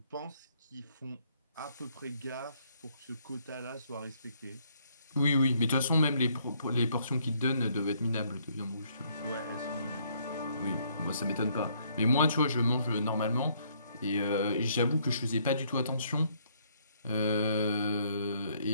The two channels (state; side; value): inverted; both; correlation -0.68